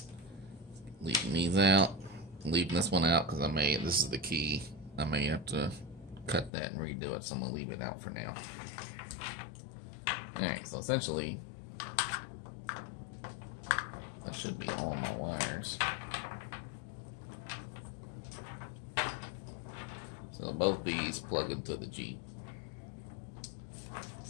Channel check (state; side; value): drops out; right; at 6.5 s